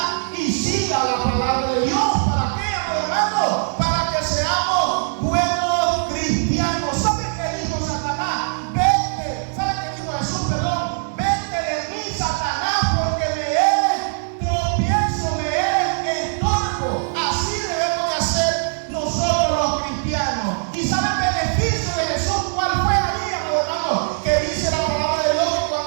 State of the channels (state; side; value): silent; left; digital silence